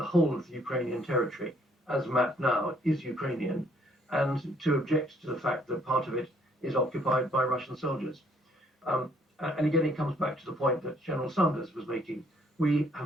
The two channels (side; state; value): both; normal; correlation 0.64